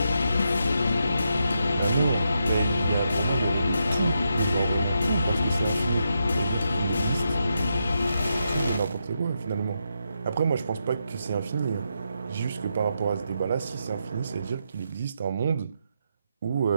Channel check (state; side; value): inverted; both; correlation -0.83